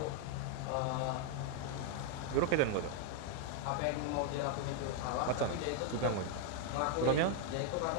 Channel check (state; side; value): different; both; correlation 0.00